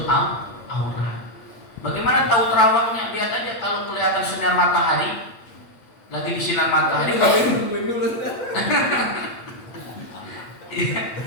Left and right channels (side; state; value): right; late; 8.7 ms